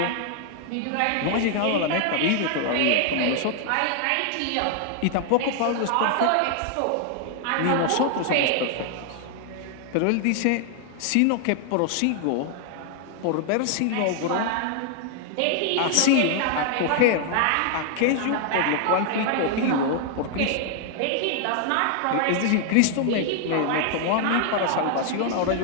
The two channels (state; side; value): different; both; correlation 0.00